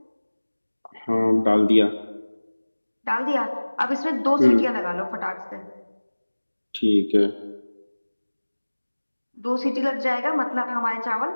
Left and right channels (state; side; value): inverted; both; correlation -1.00